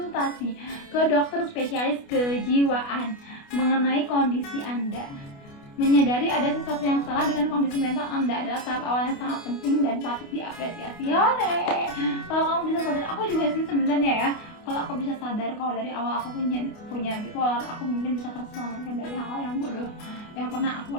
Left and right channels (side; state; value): right; late; 29 ms